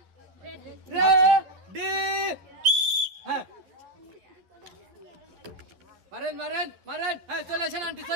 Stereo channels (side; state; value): left; late; 11 ms